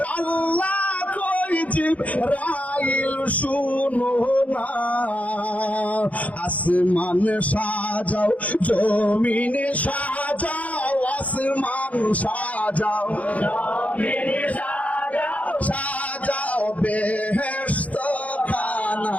আল্লাহ কই জিবরাইল শুনো না আসমান সাজাও জমিন সাজাও আসমান সাজাও জমিন সাজাও সাজাও বেহেশত খানা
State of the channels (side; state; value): right; late; 0.069 ms